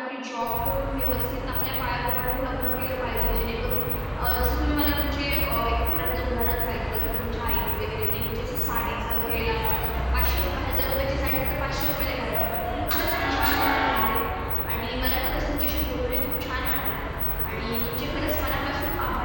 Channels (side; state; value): both; identical; correlation 1.00